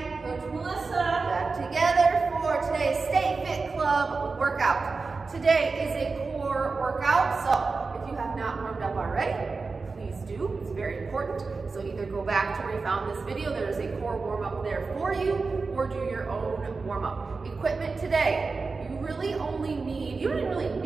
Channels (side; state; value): left; quieter; 4.2 dB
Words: Coach Melissa. Back together for today's Stay Fit Club workout. Today is a core workout, so if you have not warmed up already, please do. It's very important. So either go back to where you found this video, there's a core warm-up there for you, or do your own warm-up. Equipment today, you really only need, you don't even really